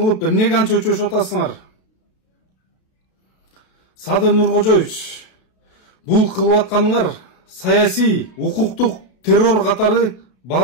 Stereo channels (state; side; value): late; right; 32 ms